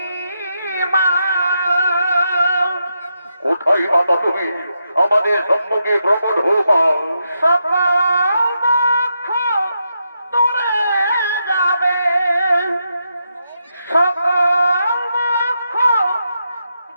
কোথায় মাতা তুমি? আমাদের সম্মুখে প্রকট হও মা। সকল দুঃখ দূরে যাবে, সকল দুঃখ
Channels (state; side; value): inverted; both; correlation -0.83